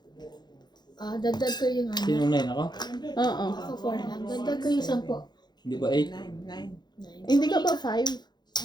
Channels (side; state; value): right; late; 0.21 ms